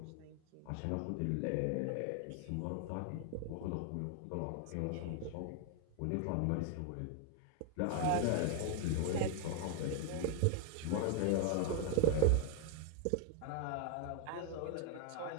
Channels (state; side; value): different; both; correlation 0.00